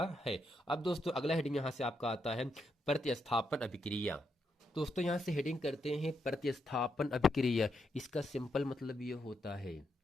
है। अब दोस्तों अगला हेडिंग यहाँ से आपका आता है प्रतिस्थापन अभिक्रिया। दोस्तों यहाँ से हेडिंग करते हैं प्रतिस्थापन अभिक्रिया। इसका सिंपल मतलब ये होता है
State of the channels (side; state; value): both; normal; correlation 0.80